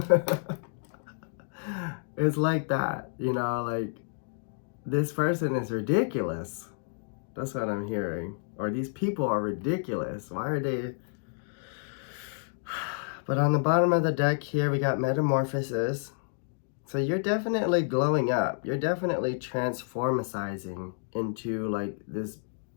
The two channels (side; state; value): right; silent; digital silence